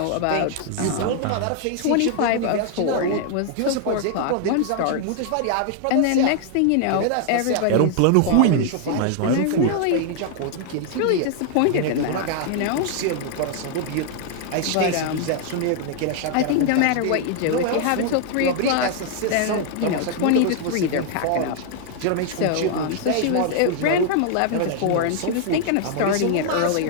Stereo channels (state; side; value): different; both; correlation 0.00